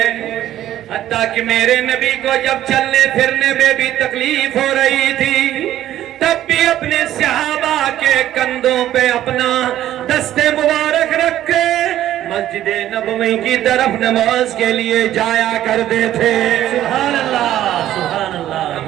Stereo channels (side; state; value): left; quieter; 12.7 dB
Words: حتیٰ کہ میرے نبی کو جب چلنے پھرنے میں بھی تکلیف ہو رہی تھی تب بھی اپنے صحابہ کے کندھوں پہ اپنا دست مبارک رکھ کے مسجد نبوی کی طرف نماز کے لیے جایا کرتے تھے۔ سبحان اللہ سبحان اللہ۔